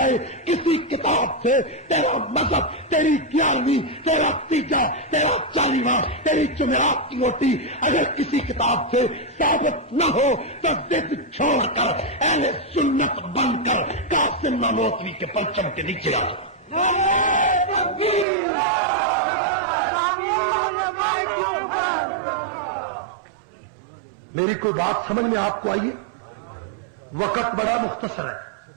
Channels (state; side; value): drops out; left; at 18.2 s